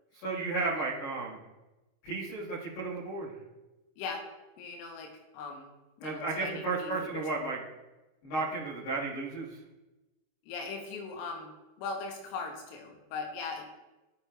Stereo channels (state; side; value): late; right; 26 ms